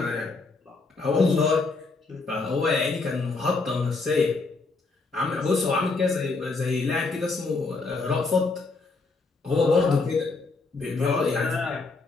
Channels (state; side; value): quieter; right; 3.8 dB